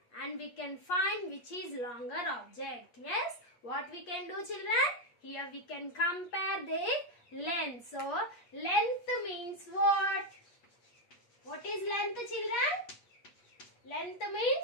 and we can find which is longer object. Yes, what we can do children? Here we can compare their length. So length means what? What is length children? Length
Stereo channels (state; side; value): late; right; 8.4 ms